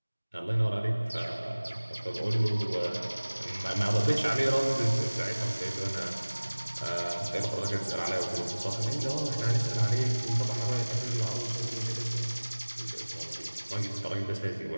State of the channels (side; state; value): both; inverted; correlation -1.00